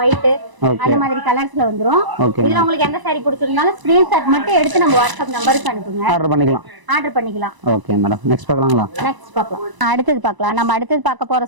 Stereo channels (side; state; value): left; late; 1.0 ms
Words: ஒயிட் அந்த மாதிரி கலர்ஸ்ல வந்துரும். இதுல உங்களுக்கு எந்த சாரி பிடிச்சிருந்தாலும் ஸ்கிரீன்ஷாட் மட்டும் எடுத்து நம்ம வாட்ஸ்அப் நம்பருக்கு அனுப்புங்க. ஆர்டர் பண்ணிக்கலாம். Okay madam. நெக்ஸ்ட் பார்க்கலாங்களா? நெக்ஸ்ட் பார்க்கலாம். அடுத்து பார்க்கலாம். நம்ம அடுத்து பார்க்க போற